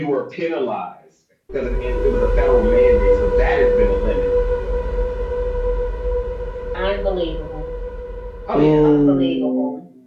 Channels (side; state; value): both; identical; correlation 1.00